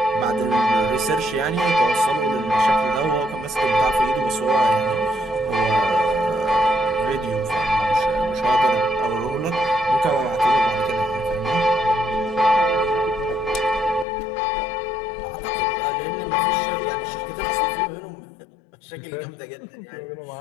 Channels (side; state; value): right; drops out; at 14.1 s